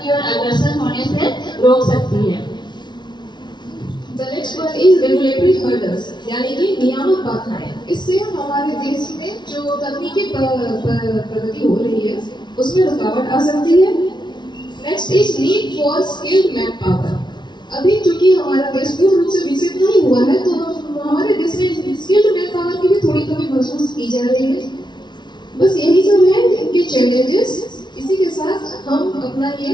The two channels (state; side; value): late; right; 0.21 ms